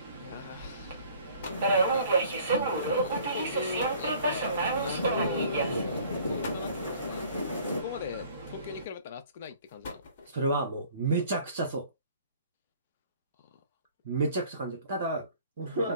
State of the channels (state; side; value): inverted; both; correlation -0.53